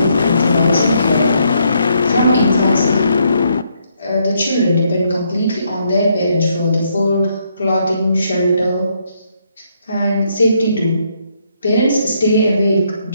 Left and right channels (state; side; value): inverted; both; correlation -0.73